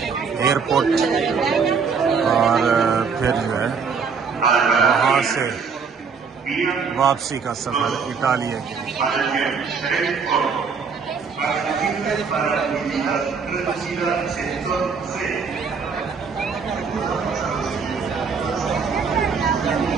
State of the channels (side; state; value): left; quieter; 5.6 dB